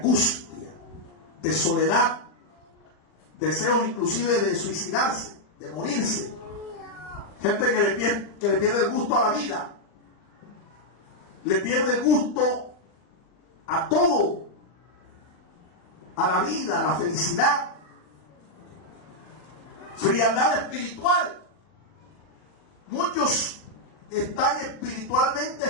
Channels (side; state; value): right; late; 40 ms